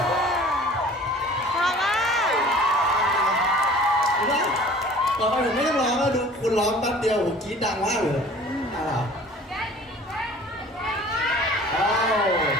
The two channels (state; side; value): normal; both; correlation 0.47